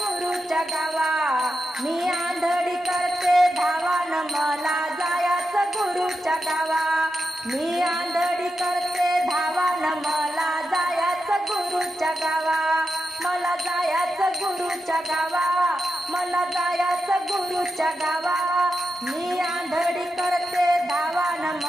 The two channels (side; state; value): both; normal; correlation 0.88